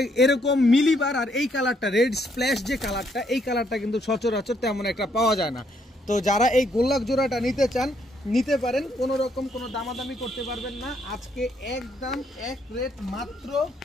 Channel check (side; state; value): both; normal; correlation 0.71